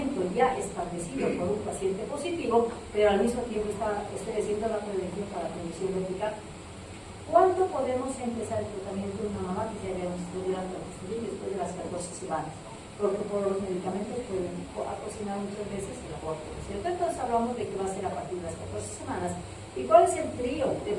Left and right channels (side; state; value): both; identical; correlation 1.00